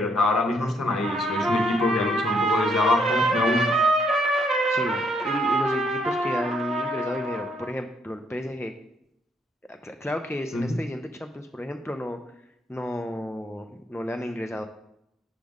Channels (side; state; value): both; normal; correlation 0.71